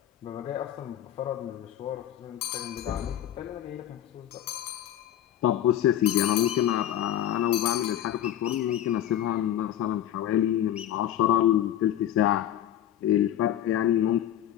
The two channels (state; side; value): quieter; right; 11.5 dB